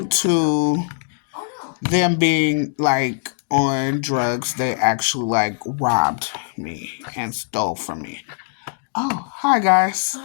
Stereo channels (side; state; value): right; silent; digital silence